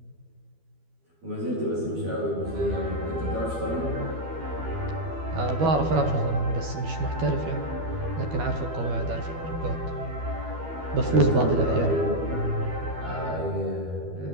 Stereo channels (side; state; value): left; late; 12 ms